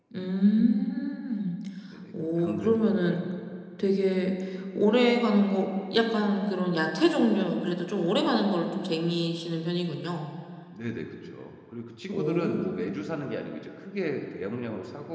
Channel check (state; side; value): identical; both; correlation 1.00